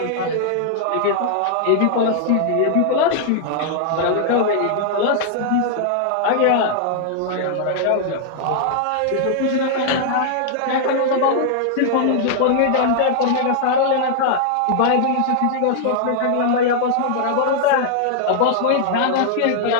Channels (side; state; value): both; different; correlation -0.01